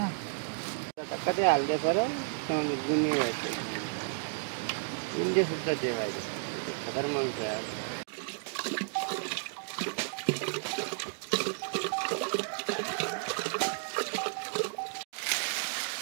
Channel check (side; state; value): left; silent; digital silence